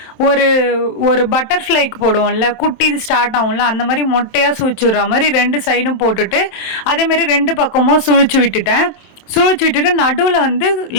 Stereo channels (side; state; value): right; late; 27 ms